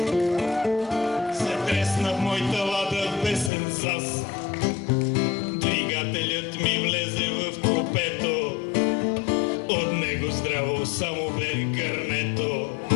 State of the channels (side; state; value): right; drops out; at 3.5 s